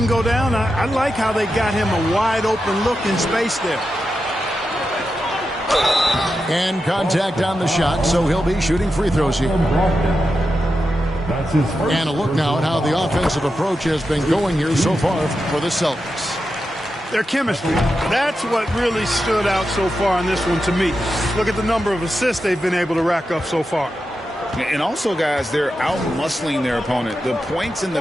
go down, I like how they got him a wide-open look in space there. And contact on the shot, so he'll be shooting free throws here. And a look now at how the offensive approach has been going here so far for the Celtics. Their chemistry, that's what really stood out so far in this one to me. Look at the number of assists they've been able to rack up so far. And also, guys, they're out-muscling their opponent. The points in the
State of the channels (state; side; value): normal; both; correlation 0.89